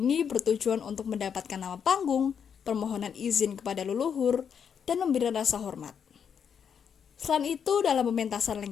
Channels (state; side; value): quieter; right; 7.4 dB